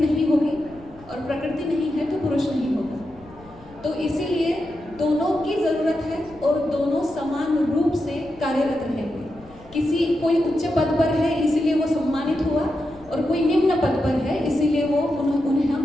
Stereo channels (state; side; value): noise; left; rumble, 23 dB below the sound